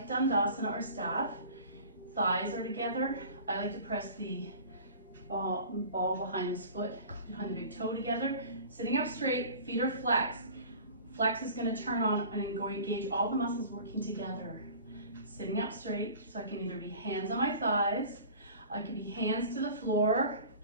Dandasana or staff. Thighs are together. I like to press the ball behind this foot, behind the big toe together. Sitting up straight, feet are flexed. Flex is going to turn on and engage all the muscles working together. Sitting up straight, so I can either be hands on my thighs, I can be hands to the floor.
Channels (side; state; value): both; inverted; correlation -0.42